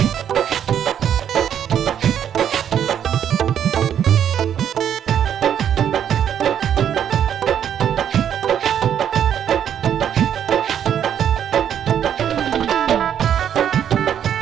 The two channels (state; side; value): quieter; left; 9.3 dB